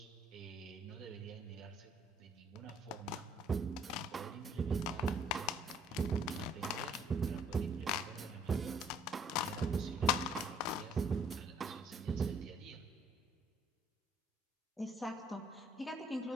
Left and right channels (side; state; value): both; normal; correlation 0.60